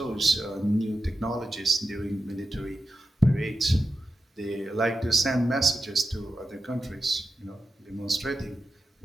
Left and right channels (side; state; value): both; normal; correlation 0.90